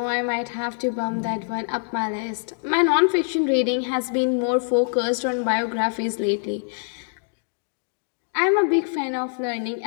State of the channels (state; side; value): silent; right; digital silence